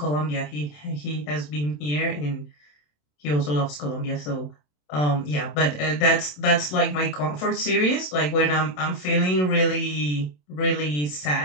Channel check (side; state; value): right; late; 27 ms